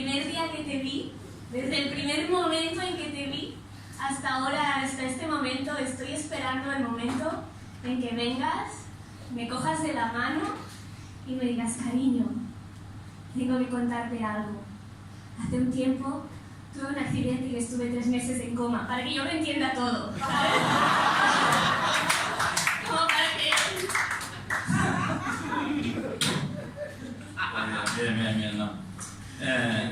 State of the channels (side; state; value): both; identical; correlation 1.00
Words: día que te vi, desde el primer momento en que te vi, hasta ahora, hasta este momento, estoy esperando el momento en que vengas, me cojas de la mano y me digas, cariño, tengo que contarte algo. Hace un tiempo tuve un accidente y estuve 3 meses en coma, para que yo lo entienda todo, ¿sabes? Como para que... Bien, no.